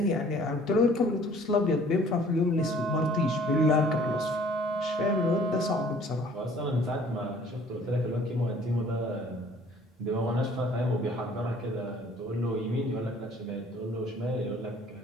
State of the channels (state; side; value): normal; both; correlation 0.54